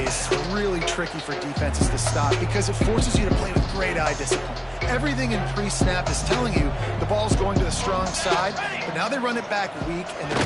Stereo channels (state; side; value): identical; both; correlation 1.00